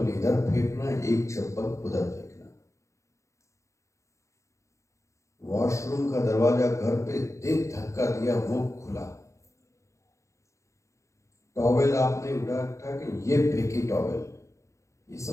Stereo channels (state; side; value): late; right; 0.15 ms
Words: इधर फेंकना, एक चप्पल उधर फेंकना। वॉशरूम का दरवाजा घर पे देख धक्का दिया, वो खुला, टॉवेल आपने उठा के ये फेंकी टॉवेल, ये